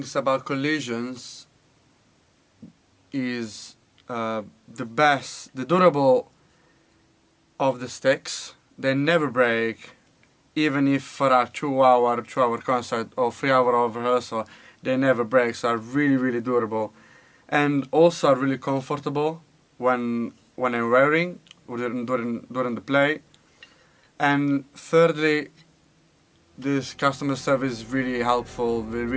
about collisions is the durable of the sticks. They never break, even if for a 2-hour concert or 3-hour of rehearsal, they never break, so are really durable. And also are really comfortable when I'm wearing during the play. And thirdly, this customer service is really helpful,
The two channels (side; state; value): both; identical; correlation 1.00